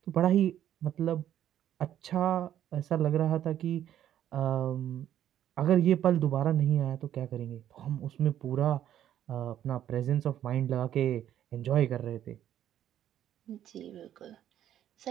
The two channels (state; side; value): quieter; left; 11.1 dB